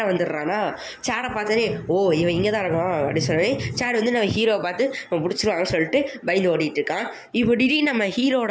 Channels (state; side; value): identical; both; correlation 1.00